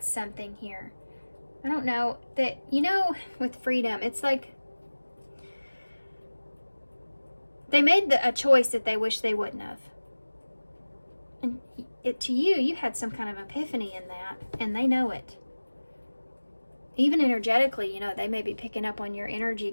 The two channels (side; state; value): both; inverted; correlation -1.00